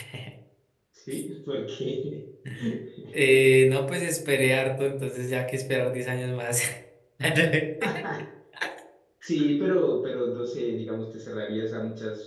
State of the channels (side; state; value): both; identical; correlation 1.00